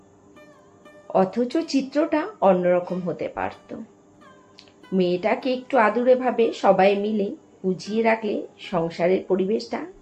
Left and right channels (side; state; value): both; identical; correlation 1.00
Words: অথচ চিত্রটা অন্যরকম হতে পারত। মেয়েটাকে একটু আদুরে ভাবে সবাই মিলে বুঝিয়ে রাখলে সংসারের পরিবেশটা